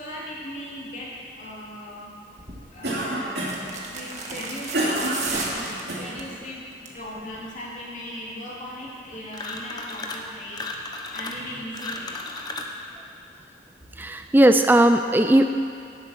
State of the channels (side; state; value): both; normal; correlation 0.70